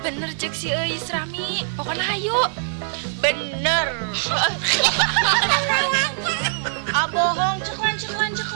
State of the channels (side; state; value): left; silent; digital silence